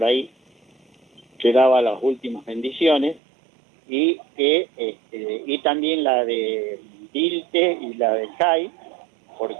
ahí, que daba las últimas bendiciones, y y también la de Dilte y la de Jai,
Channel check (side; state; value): left; drops out; at 3.2 s